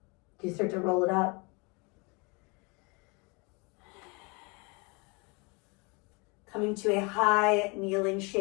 you start to roll it up? Coming to a high kneeling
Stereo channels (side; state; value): right; quieter; 29.9 dB